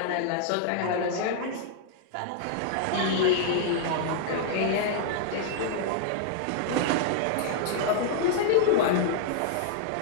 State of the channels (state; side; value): different; both; correlation -0.01